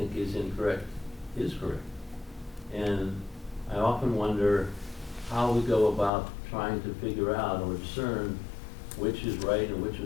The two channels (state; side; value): drops out; right; at 6.1 s